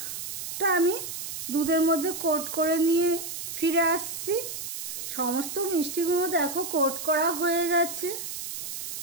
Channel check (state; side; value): noise; right; hiss, 6 dB below the sound